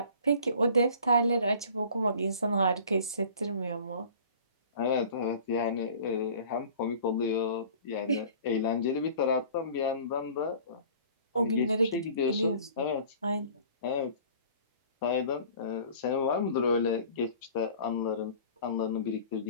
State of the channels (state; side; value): inverted; both; correlation -0.47